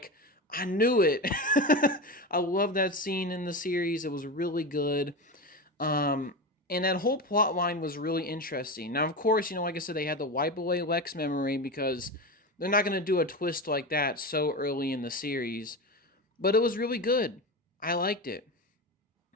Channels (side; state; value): both; normal; correlation 0.22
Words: "I knew it." I love that scene in the series. It was really good. And that whole plot line was really interesting. Now, of course, like I said, they had to wipe away Lex memory because they're not going to do a twist like that so early in the series. But it was really good. I liked it.